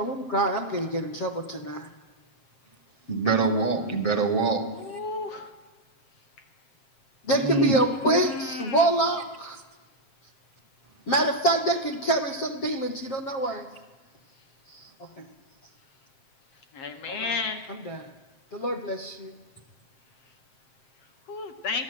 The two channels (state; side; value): late; right; 7.5 ms